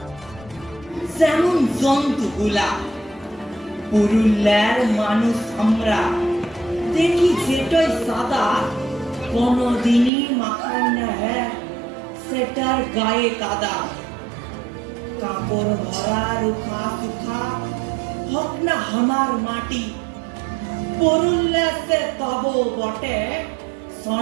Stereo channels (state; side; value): drops out; left; at 10.1 s